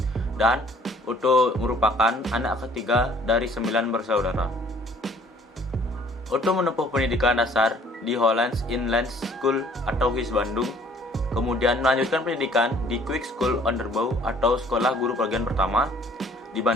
Dan Oto merupakan anak ketiga dari 9 bersaudara. Oto menempuh pendidikan dasar di Hollands Inland School atau HIS Bandung, kemudian melanjutkan pendidikan di Quick School Onderbouw atau Sekolah Guru Bagian Pertama di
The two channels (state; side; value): normal; both; correlation 0.57